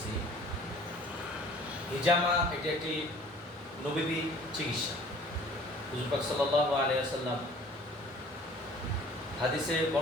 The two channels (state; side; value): normal; both; correlation 0.50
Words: হিজামা এটি একটি নবী চিকিৎসা। হুজুর পাক সাল্লাল্লাহু আলাইহি ওয়াসাল্লাম হাদিসে